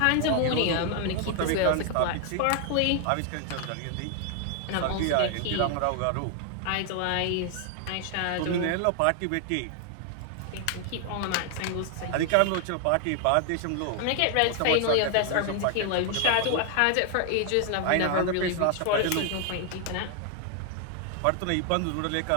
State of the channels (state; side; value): different; both; correlation 0.00